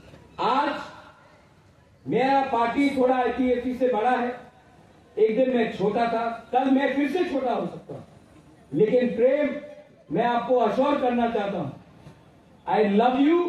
आज मेरा पार्टी थोड़ा आईपीएफटी से बड़ा है। एक दिन मैं छोटा था, कल मैं फिर से छोटा हो सकता हूं, लेकिन प्रेम, मैं आपको अश्योर करना चाहता हूं, I love you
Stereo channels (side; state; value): both; identical; correlation 1.00